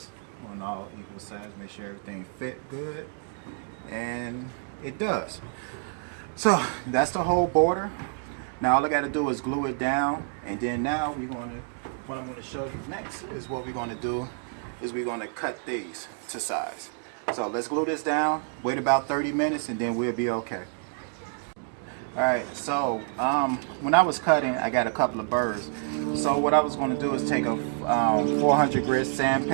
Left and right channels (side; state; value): left; silent; 59 dB below the other